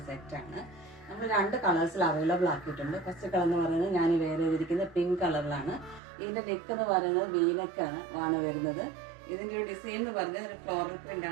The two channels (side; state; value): left; drops out; at 6.0 s